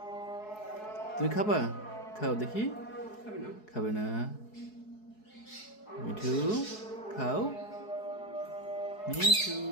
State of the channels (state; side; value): late; right; 4.7 ms